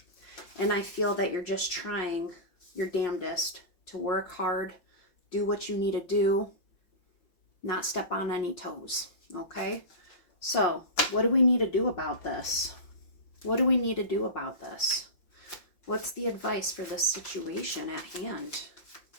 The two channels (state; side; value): late; right; 5.7 ms